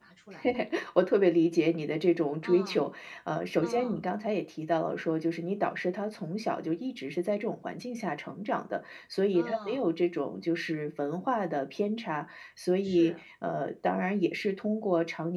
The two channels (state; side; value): identical; both; correlation 1.00